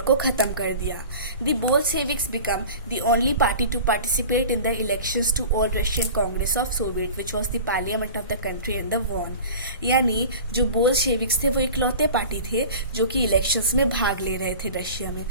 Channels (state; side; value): inverted; both; correlation -0.38